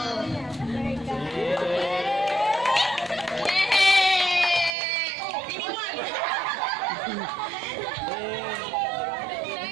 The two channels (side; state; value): left; drops out; at 4.8 s